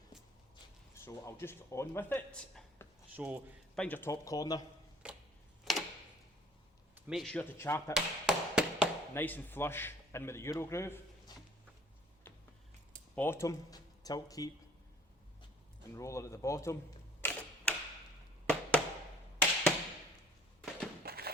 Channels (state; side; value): normal; both; correlation 0.55